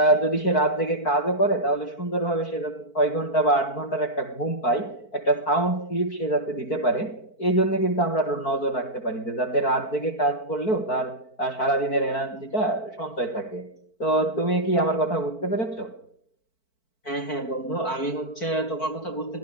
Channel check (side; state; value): right; late; 4.5 ms